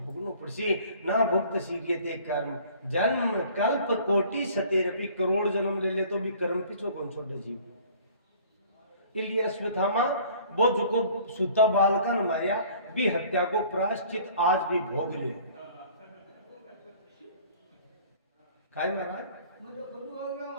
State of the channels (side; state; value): both; inverted; correlation -0.51